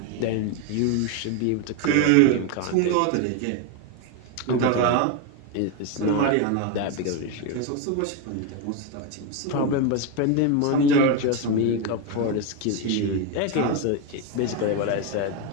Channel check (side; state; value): both; different; correlation 0.02